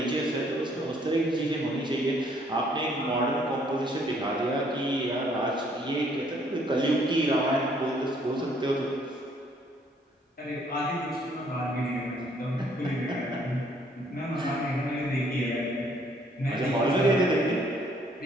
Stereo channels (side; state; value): both; normal; correlation 0.64